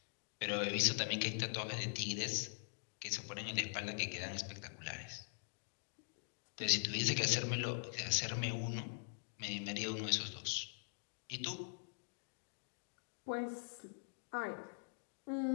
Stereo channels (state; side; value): silent; right; digital silence